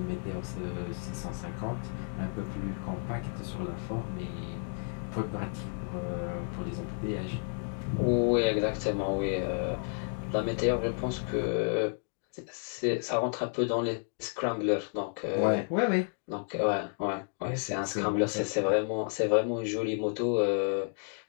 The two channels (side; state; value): right; silent; 57 dB below the other